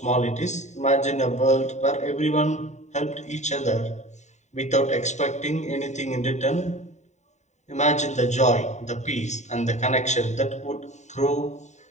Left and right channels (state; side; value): late; right; 0.34 ms